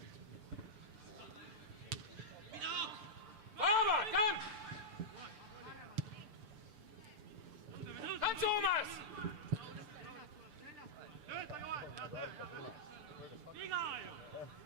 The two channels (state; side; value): late; left; 6.8 ms